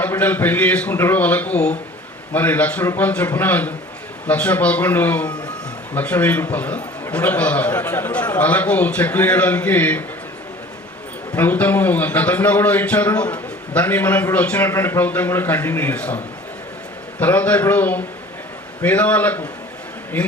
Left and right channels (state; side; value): normal; both; correlation 0.46